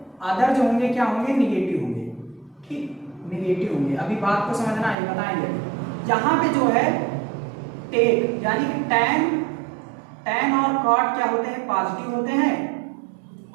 क्या होंगे निगेटिव होंगे, ठीक, निगेटिव होंगे। अभी बात को समझना है, बताएंगे। यहाँ पे जो है टेक यानी कि टैन और कॉट क्या होते हैं पॉजिटिव होते हैं,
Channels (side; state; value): left; drops out; at 5.0 s